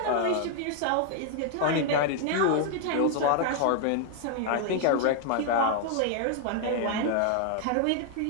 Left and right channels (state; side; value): different; both; correlation 0.00